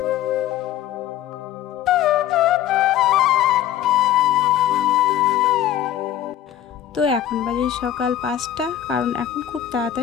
তো এখন বাজে সকাল 5টা, কারণ এখন খুব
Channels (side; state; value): right; quieter; 11.4 dB